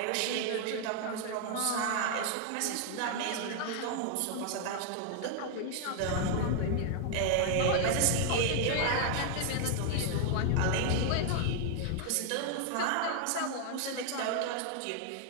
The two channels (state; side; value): different; both; correlation 0.00